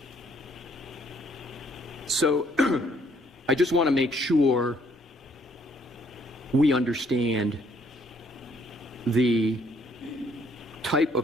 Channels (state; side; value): normal; both; correlation 0.65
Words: So I just want to make sure we understand the type